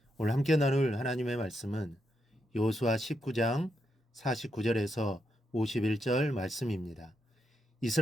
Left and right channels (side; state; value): both; normal; correlation 0.81